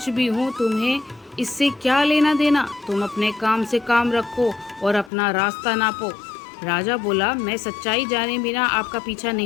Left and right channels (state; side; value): drops out; right; at 5.1 s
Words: भी हूँ तुम्हें इससे क्या लेना देना, तुम अपने काम से काम रखो और अपना रास्ता नापो। राजा बोला, मैं सच्चाई जाने बिना आपका पीछा